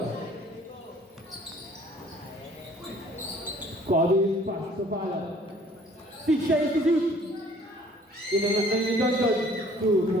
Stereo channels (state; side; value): normal; both; correlation 0.55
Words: Kobe pass to Fala. 6 siya to shoot. Inangan ni Johnson. 2